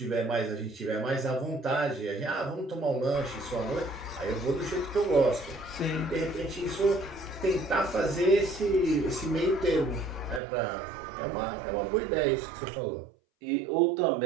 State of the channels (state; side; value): drops out; left; at 10.4 s